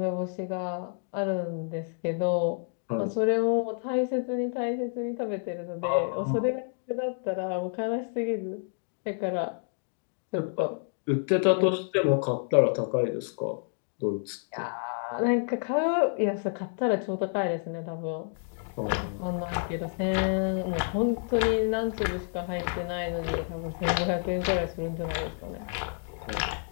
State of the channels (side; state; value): right; silent; 58 dB below the other